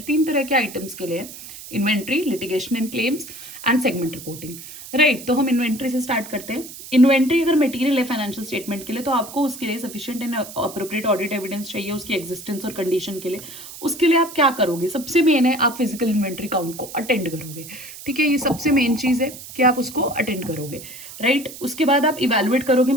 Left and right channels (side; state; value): right; noise; hiss, 14 dB below the sound